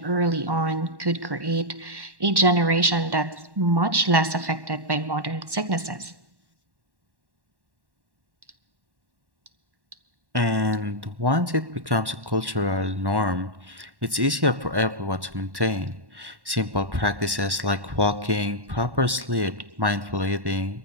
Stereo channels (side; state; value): left; late; 1.1 ms